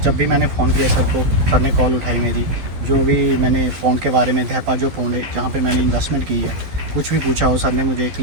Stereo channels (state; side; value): late; left; 11 ms